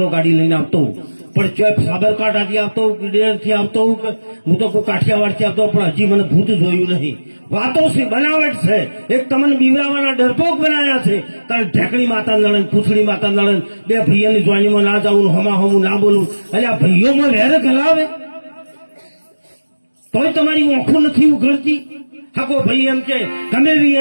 ગાડી લઈને આવતો, પણ ચોય સાબરકાંઠાથી આવતો, ડેરથી આવતો, હું તો કોઈ કાઠિયાવાડથી આવતો, પણ હજી મને ભૂત જોયું નહીં. વાતો છે, બનાવટ છે. એક તમને બીવરાવાના ડરપોક બનાવ્યા છે. તારે ઢેકણી માતા નળન, પૂછડી માતા નળન, બે ભાઈઓની જોઈનીમાં ના જાવું, હમા હમું ના બોલવું. એટલે આ ભાઈઓમાં વેર ગલાવે તોય તમારી ઓંખું નથી ઉઘડતી. હાકો ભાઈ એમ કે ગમે એવી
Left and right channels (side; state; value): both; inverted; correlation -1.00